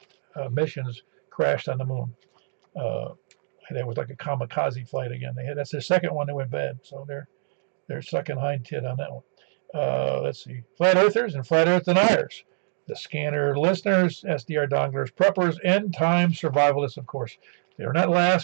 missions crashed on the moon. That was like a kamikaze flight again. That's their second one that went bad, so they're sucking hind tit on that one. Let's see, flat earthers and flat earth deniers, the scanner listeners, SDR donglers, preppers, end time survivalists, of course. They're not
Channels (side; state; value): left; silent; digital silence